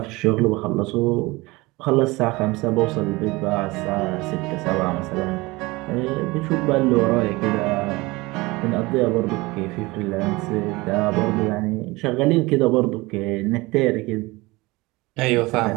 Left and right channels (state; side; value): quieter; left; 22.3 dB